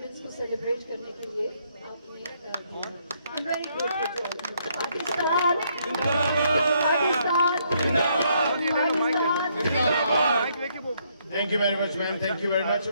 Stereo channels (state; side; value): inverted; both; correlation -0.71